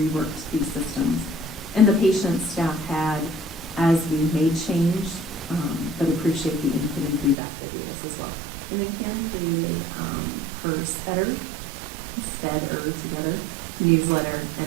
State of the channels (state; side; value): drops out; left; at 7.4 s